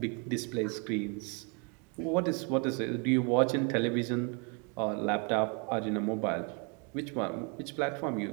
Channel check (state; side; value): quieter; left; 33.7 dB